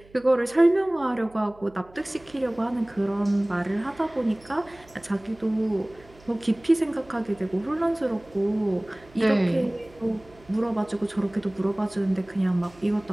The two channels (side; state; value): right; noise; hum, 26 dB below the sound